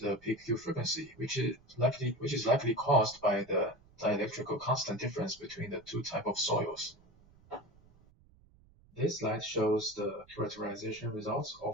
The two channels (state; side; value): noise; right; rumble, 28 dB below the sound